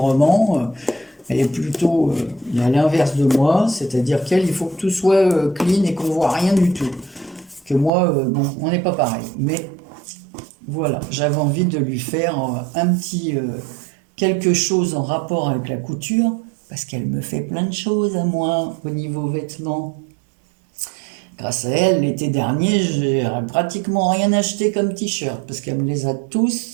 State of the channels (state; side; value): drops out; left; at 7.9 s